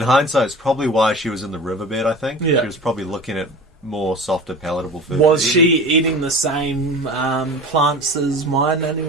hindsight, is probably why she was in the riverbed. I think Yeah. she was probably looking at more softer, palatable food. Was to she eat. eating the same plants as my nanny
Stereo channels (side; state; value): both; normal; correlation 0.36